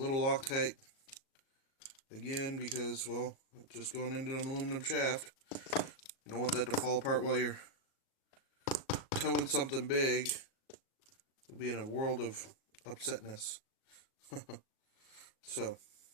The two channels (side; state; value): right; late; 38 ms